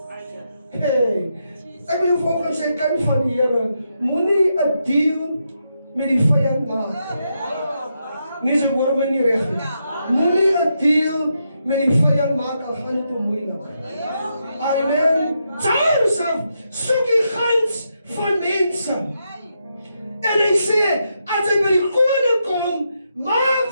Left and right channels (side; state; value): both; inverted; correlation -0.82